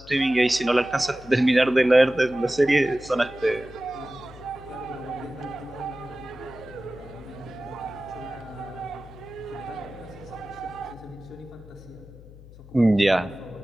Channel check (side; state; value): left; noise; hum, 19 dB below the sound